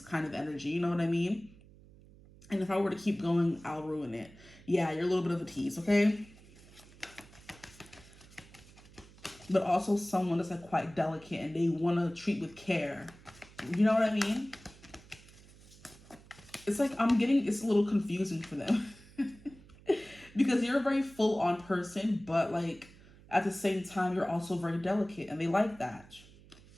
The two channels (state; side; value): noise; right; hum, 23 dB below the sound